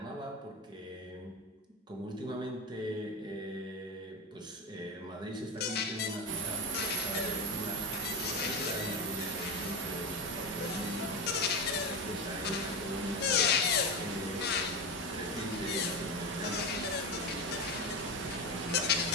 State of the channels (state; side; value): normal; both; correlation 0.17